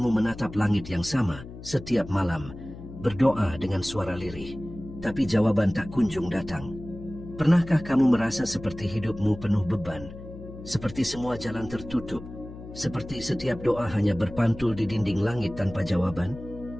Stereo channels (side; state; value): left; noise; hum, 14 dB below the sound